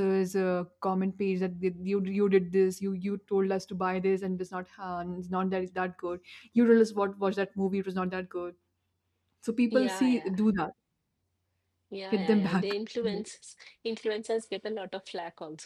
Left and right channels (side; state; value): both; identical; correlation 1.00